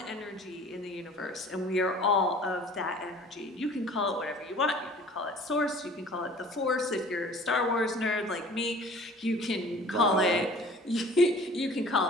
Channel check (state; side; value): normal; both; correlation 0.48